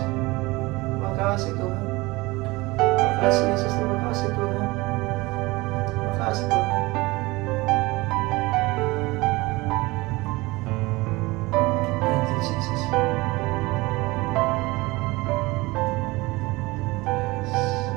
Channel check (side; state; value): left; quieter; 22.1 dB